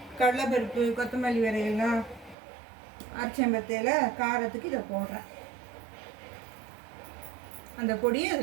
கடலைப்பருப்பு, கொத்தமல்லி விரையெல்லாம் அரைச்சம்பத்தையில் காரத்துக்கு இதை போடுறேன். அந்த பொடியை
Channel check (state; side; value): drops out; left; at 2.4 s